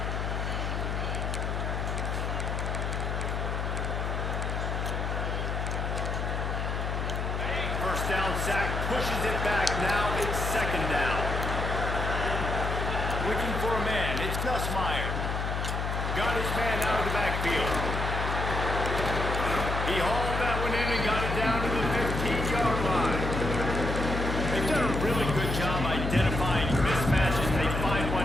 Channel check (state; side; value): noise; left; hum, 2 dB below the sound